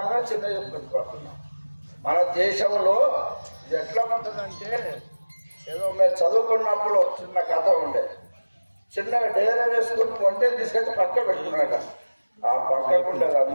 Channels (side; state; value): both; inverted; correlation -1.00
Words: చిన్న చెప్పుకుంటున్నాం. మన దేశంలో ఇది ఎట్లా ఉంటుందంటే, ఏదో మేము చదువుకున్నప్పుడు చిన్న కథ ఉండే. చిన్నగా డేరా వేసుకుని వంటలు తీసుకెళ్ళి పక్క పెట్టుకున్నాక ఆ పక్కకు ఉండేది